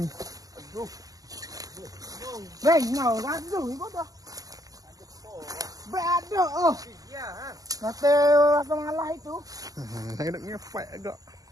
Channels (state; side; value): late; left; 0.17 ms